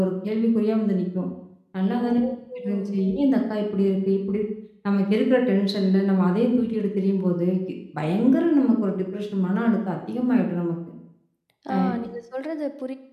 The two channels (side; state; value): both; identical; correlation 1.00